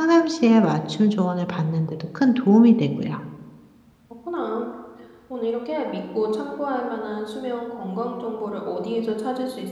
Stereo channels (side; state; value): both; identical; correlation 1.00